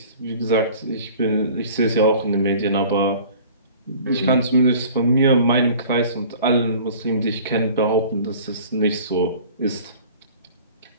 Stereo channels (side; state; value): both; inverted; correlation -0.46